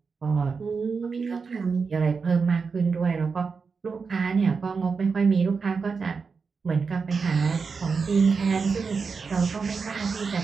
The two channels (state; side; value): quieter; left; 5.1 dB